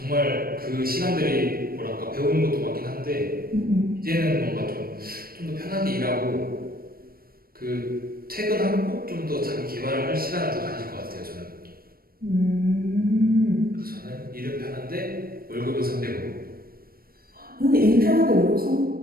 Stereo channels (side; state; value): left; late; 0.43 ms